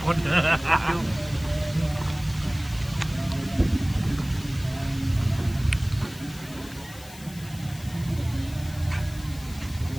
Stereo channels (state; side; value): noise; left; hiss, 18 dB below the sound